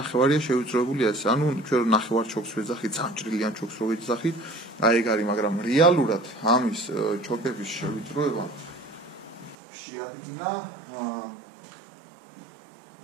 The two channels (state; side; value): drops out; left; at 9.6 s